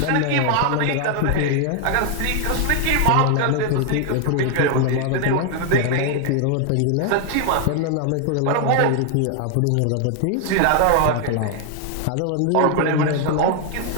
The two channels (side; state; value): both; different; correlation 0.00